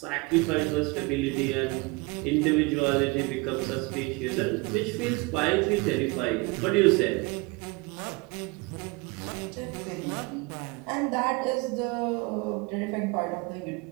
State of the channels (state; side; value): quieter; left; 26.3 dB